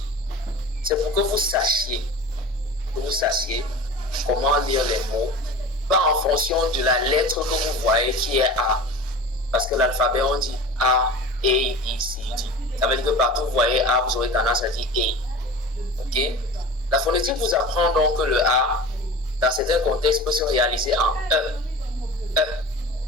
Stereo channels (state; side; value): normal; both; correlation 0.35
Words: C'est pour que vous sachiez comment lire les mots, pas en fonction de la lettre que vous voyez qui est A. Parce que l'alphabet, on dit A, B, C, D. Ça veut dire que partout vous voyez A, vous aurez tendance à dire E. Ok? La phonétique vous apprend donc que le A, dans certains contextes, peut se réaliser en E.